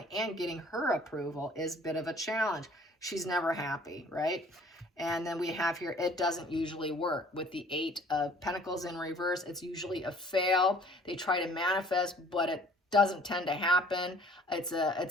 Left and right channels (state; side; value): normal; both; correlation 0.53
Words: and getting her approval is a bit of a challenge. She's never happy, right? And then we have here, it doesn't usually work. With the 8 of Pentacles in reverse, it's usually a fail. They try to manifest, but it doesn't tend to happen. It's